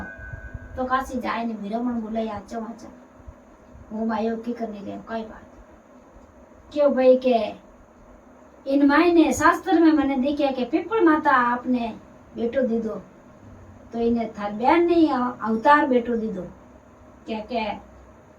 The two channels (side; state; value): both; identical; correlation 1.00